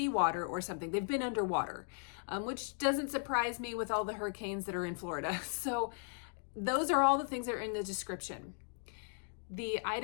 or something. They've been underwater, which doesn't surprise me with all the hurricanes that are in Florida. So those are all the things that are in the description. The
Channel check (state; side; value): silent; right; 53 dB below the other